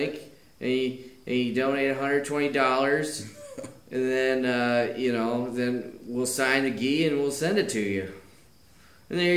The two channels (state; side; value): identical; both; correlation 1.00